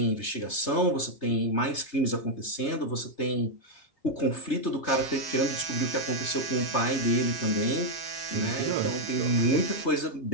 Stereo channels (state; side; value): late; right; 3.3 ms